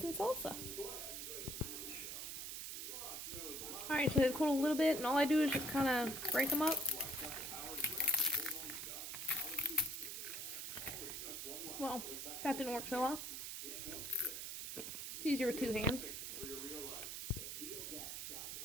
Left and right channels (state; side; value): noise; right; hiss, 5 dB below the sound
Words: and salsa. Alright, so they've cooled a little bit, and all I do is just kind of break them up. Well, that didn't work so well. It's easier with two hands.